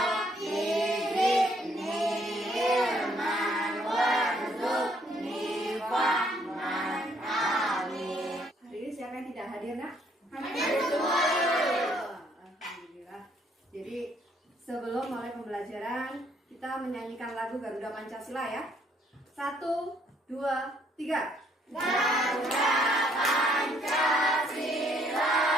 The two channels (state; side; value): normal; both; correlation 0.67